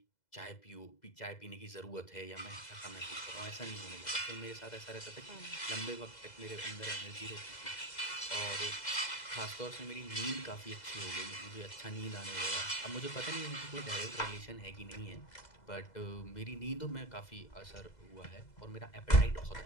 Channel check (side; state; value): right; late; 2.0 ms